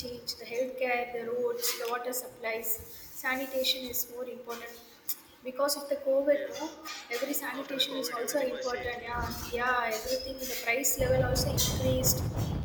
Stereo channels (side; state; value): both; identical; correlation 1.00